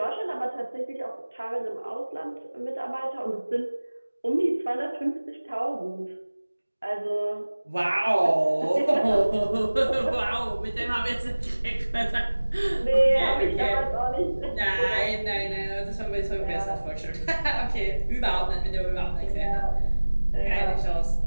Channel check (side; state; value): both; inverted; correlation -1.00